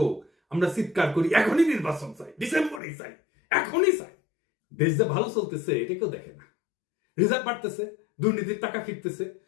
আমরা চিৎকার করি এখনই নির্বাচন চাই, ডিসেম্বরেই চাই, এখনই চাই। দেশ যে ভালো চলতেছে এটা কেউ দেখে না। রিজার্ভ বাড়তেছে, দুর্নীতির টাকা ফিরতেছে,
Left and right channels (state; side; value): drops out; right; at 2.8 s